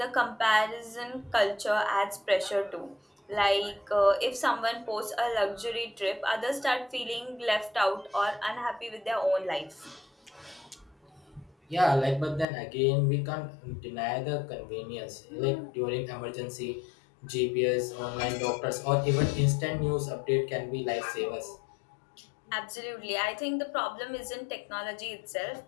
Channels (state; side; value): drops out; right; at 12.5 s